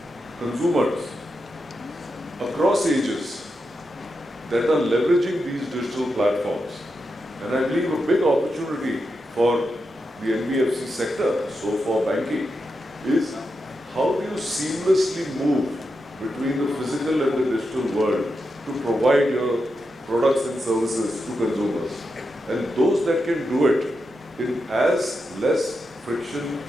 consumers across ages that are leveraging these digital platforms. And I believe a big opportunity for the NBFC sector, so for banking, is how do you seamlessly move between the physical and the digital world to provide your products and services to consumers. And those that can do it in as less friction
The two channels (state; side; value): normal; both; correlation 0.87